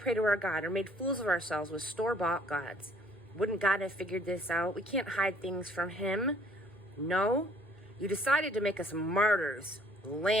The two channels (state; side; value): normal; both; correlation 0.60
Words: to our God or made fools of ourselves with store-bought gods, wouldn't God have figured this out? We can't hide things from him. No, you decided to make us martyrs,